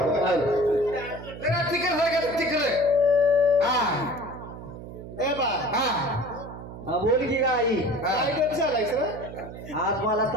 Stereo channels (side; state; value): right; noise; hum, 12 dB below the sound